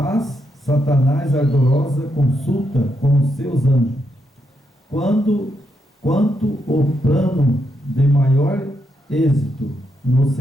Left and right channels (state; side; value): normal; both; correlation 0.80